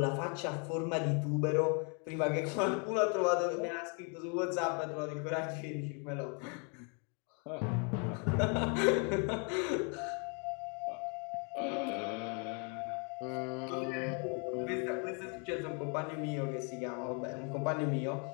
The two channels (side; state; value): right; quieter; 36.9 dB